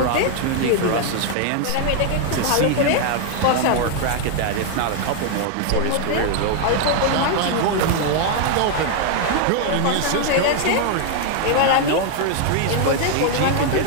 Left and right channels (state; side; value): different; both; correlation 0.00